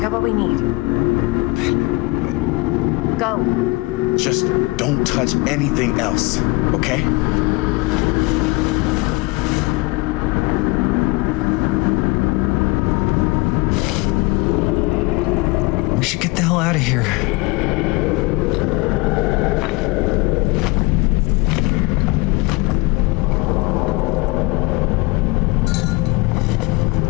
what we need. Go. Just don't touch anything else, okay? We should get the hell out of here.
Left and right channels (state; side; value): quieter; right; 24.8 dB